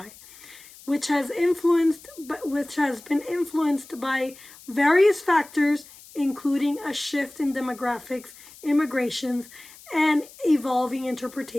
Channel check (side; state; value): left; noise; hiss, 21 dB below the sound